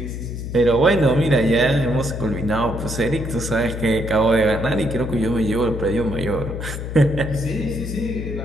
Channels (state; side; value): noise; left; hum, 6 dB below the sound